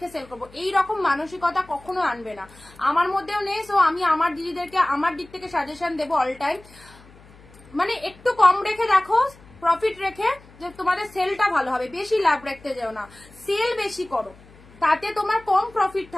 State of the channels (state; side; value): noise; left; hum, 24 dB below the sound